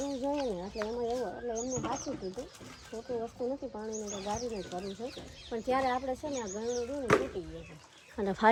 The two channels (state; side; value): identical; both; correlation 1.00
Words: જોઈએ ને, એટલે એમાં એવું એટલે એમને સાચું કીધું. ખોટી વસ્તુ નથી, પાણીને તો ગારીને જ ભરવું છે. પણ ત્યારે આપણે છે ને આ ગળણું રહ્યું ને તૂટી ગયું છે. અને